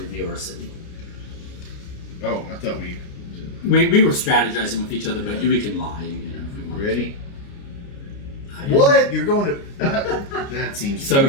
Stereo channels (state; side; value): late; right; 29 ms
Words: our city. Oh, I thought we We were strategizing with each other, but we can lie, if we want. ready. To. What? You're going to? That seems. So